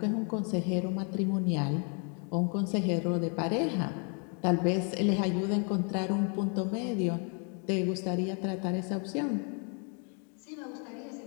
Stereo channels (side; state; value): right; quieter; 39.1 dB